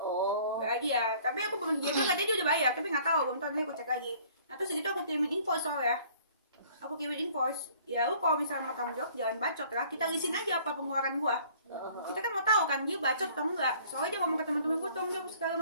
dia. Tapi aku belum, dia bilang katanya dia udah bayar, tapi nggak tahu, belum tahu, nanti aku cek lagi. Nah terus gitu aku kirimin invoice soalnya. Aku kirimin invoice. Ya lu kalau misalnya mau tanggung jawab jangan bacot lah. Kita lisin aja apa pengeluaran gua. Kita kan mau tahu kan dia bacot atau enggak. Soalnya dia ngomong ke teman-teman gua tanggung jawab segala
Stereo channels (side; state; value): both; inverted; correlation -0.54